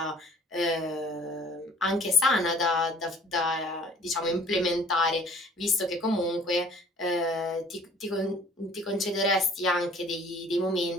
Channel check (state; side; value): normal; both; correlation 0.52